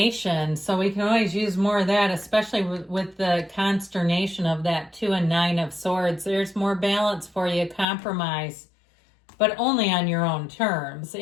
so we can always use more of that, especially with the consternation of that 2 and 9 of Swords. There's more balance for you, compromise, but only on your own terms,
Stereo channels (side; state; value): right; drops out; at 7.9 s